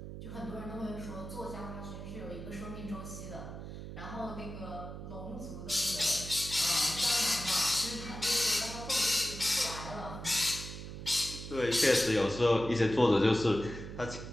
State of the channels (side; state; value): right; noise; hum, 10 dB below the sound